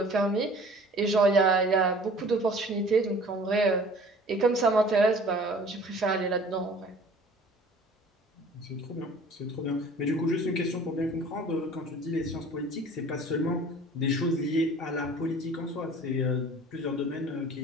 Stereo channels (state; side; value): normal; both; correlation 0.48